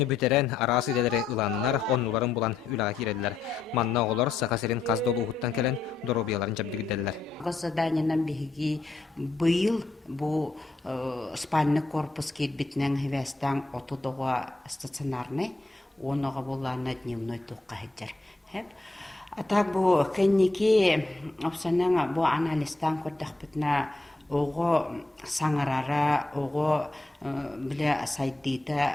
бүтерен арасы дәлері ұланынар, оннуларын бұлан үлі кейреділер. Манна олар сақасерін қаздолу ұғыттан кәлін дробияларын жабдығыддәлілер. Заданиянан бігі бұйыл бұл спальный корпус кетбітінің хевестен отудуға стационарный, оныға боларына дневной туққа хеджер. А так бұл кәннеке опсанның бұл анализтан көрдіқ бітіна оғы саңырара, оғы біле сайдейді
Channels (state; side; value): quieter; right; 3.4 dB